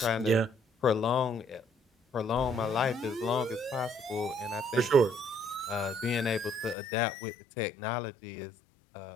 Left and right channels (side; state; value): right; drops out; at 6.8 s